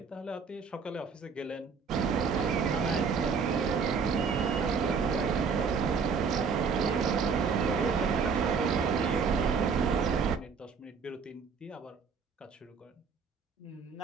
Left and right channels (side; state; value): left; quieter; 5.6 dB